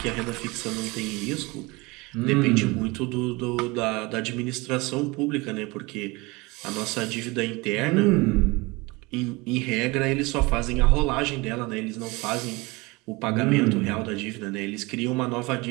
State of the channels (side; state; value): left; quieter; 24.3 dB